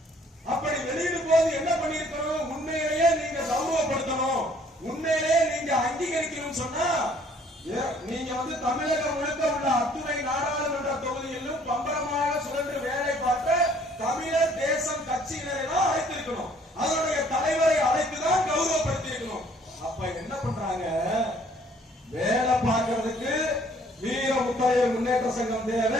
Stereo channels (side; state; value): both; normal; correlation 0.59